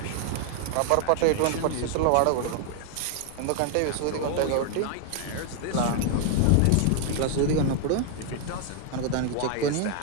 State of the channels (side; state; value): both; different; correlation 0.00